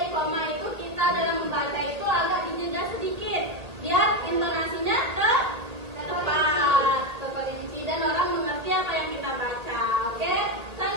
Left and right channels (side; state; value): left; late; 1.8 ms